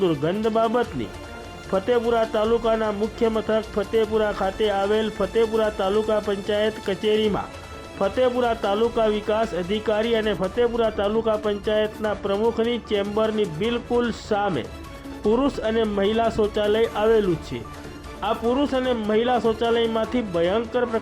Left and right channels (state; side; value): identical; both; correlation 1.00